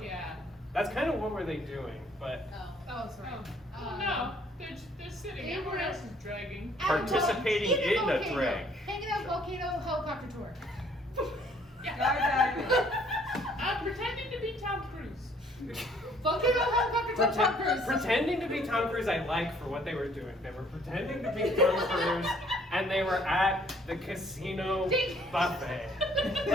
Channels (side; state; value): both; normal; correlation 0.61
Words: Yeah. That's kind of what were they doing, but Oh, sorry. No, they're sitting. they Everyone were- else is dragging. Participating in a drag. Hanging out volcano helicopter tour. I'm pretending to be Tom Cruise. Volcano helicopter tour. Tom Cruise. pretending to be Tom Cruise, I like for what they were doing. They were pretending to be Tom Cruise, and they were at the casino buffet.